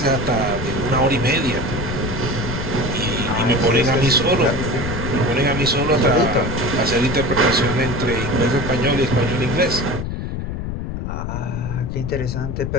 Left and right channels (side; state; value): left; noise; rumble, 4 dB below the sound